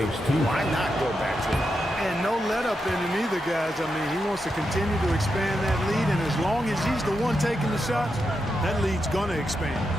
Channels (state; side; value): normal; both; correlation 0.86